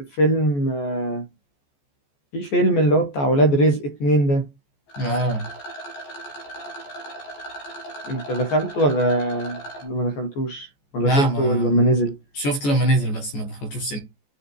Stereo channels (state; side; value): late; right; 14 ms